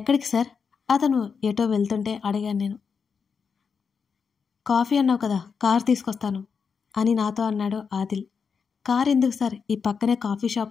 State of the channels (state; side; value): quieter; right; 5.9 dB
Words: సార్? అతను ఎటో వెళ్తుంటే అడిగాను నేను. కాఫీ అన్నావు కదా, కార్ తీసుకొస్తాను అని నాతో అన్నాడు ఆదిల్. కార్ ఎందుకు సార్, ఈ పక్కనే కాఫీ